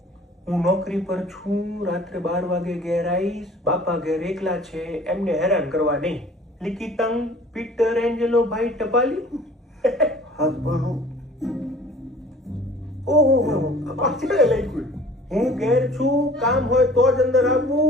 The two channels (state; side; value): normal; both; correlation 0.49